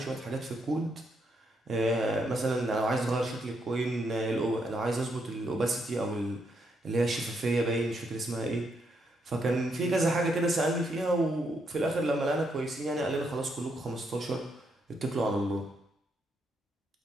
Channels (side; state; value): both; normal; correlation 0.77